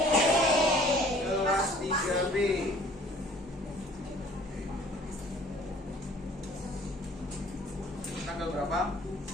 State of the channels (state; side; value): normal; both; correlation 0.53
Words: Kelas 3B. Tanggal berapa?